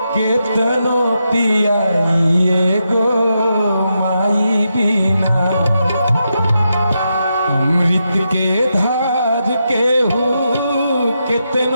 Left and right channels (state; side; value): inverted; both; correlation -0.85